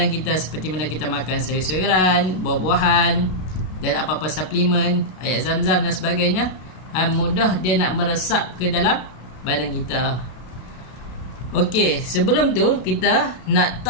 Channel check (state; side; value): late; right; 32 ms